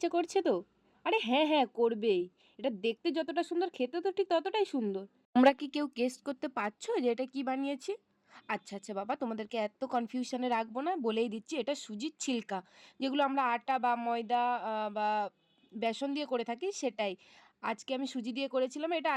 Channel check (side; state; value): both; identical; correlation 1.00